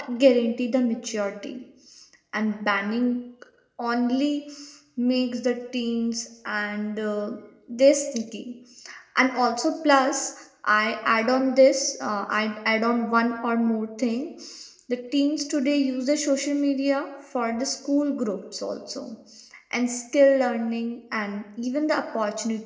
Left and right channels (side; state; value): both; identical; correlation 1.00